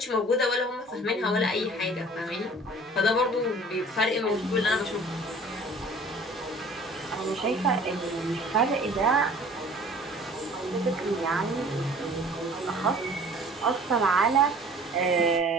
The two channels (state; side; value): normal; both; correlation 0.48